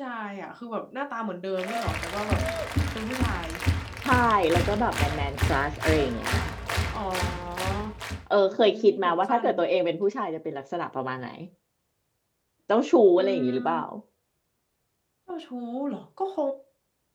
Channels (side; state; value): both; identical; correlation 1.00